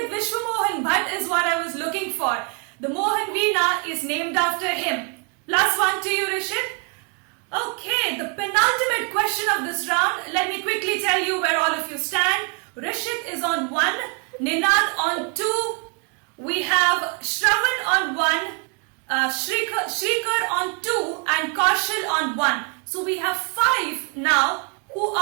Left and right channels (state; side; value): quieter; left; 35.6 dB